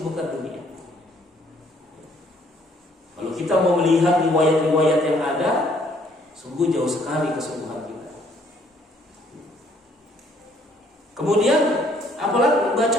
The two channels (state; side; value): normal; both; correlation 0.64